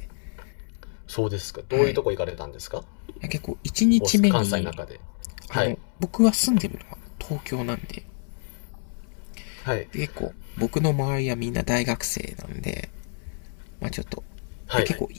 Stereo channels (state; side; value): silent; right; digital silence